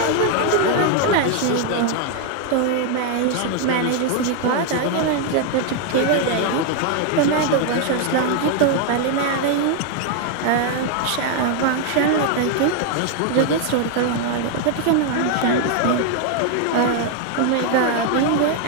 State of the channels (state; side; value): different; both; correlation 0.00